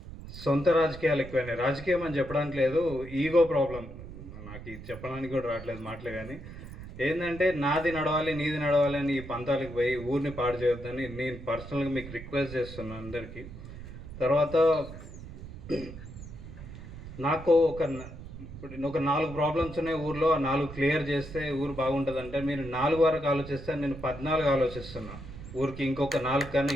సొంత రాజకీయాలు ఎక్కువైనాయి. రాజకీయం అని చెప్పడానికి లేదు, ఈగో ప్రాబ్లం. నాకు ఇది చెప్పడానికి కూడా రావట్లేదు మాటలు, కానీ ఏంటంటే నాది నడవాలి నీది నడవాలి అని ఈ పంతాలకు పోయి ఊరిని పాడు చేయొద్దని నేను పర్సనల్గా మీకు రిక్వెస్ట్ చేస్తున్నాను అందరికీ. తర్వాత నాకు ఒక 4 ప్రాబ్లమ్స్ ఉన్నాయి ఊర్లో, ఆ 4 క్లియర్ చేస్తే ఊరు బాగుంటుంది. అంటే మీరు 4 వరకు ఆలోచిస్తే నేను 14 ఆలోచిస్తున్నా. ఊరికి ఇంకొక 4 కన్నా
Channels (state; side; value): noise; right; rumble, 13 dB below the sound